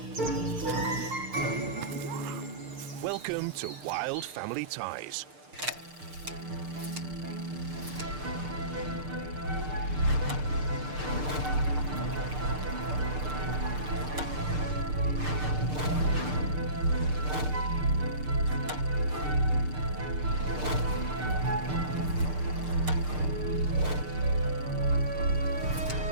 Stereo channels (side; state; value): left; late; 6.7 ms